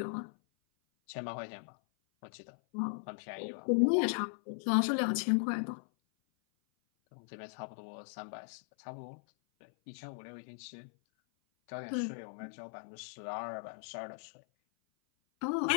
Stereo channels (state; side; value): silent; right; 53 dB below the other